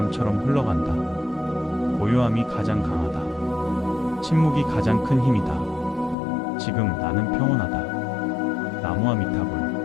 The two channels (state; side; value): drops out; right; at 6.2 s